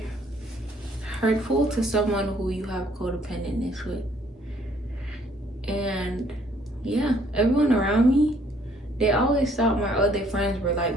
hurtful to someone who you have codependentness with. And yeah, everyone around me, they always thought my other friends were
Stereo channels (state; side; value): normal; both; correlation 0.63